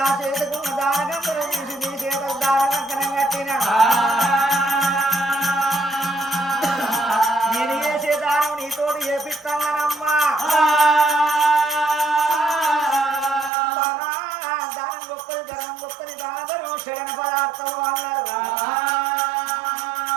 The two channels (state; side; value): drops out; left; at 13.5 s